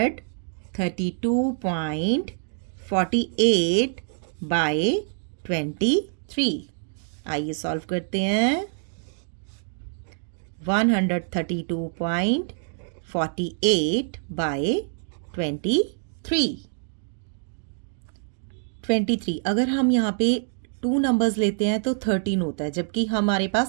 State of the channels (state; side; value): silent; left; digital silence